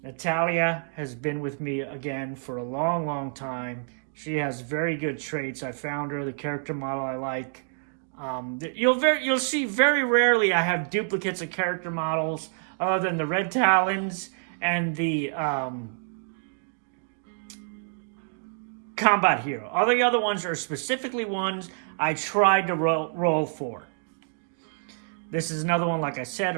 Natalia has been with me again for a long time. She has very good traits. I found her, the character model I like. You'll see very rarely I have duplicates of character models other than the Red Talons and the combat hero. All the other ones are specifically ones I tried to roll for. This is another one, like I said,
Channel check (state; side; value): silent; left; digital silence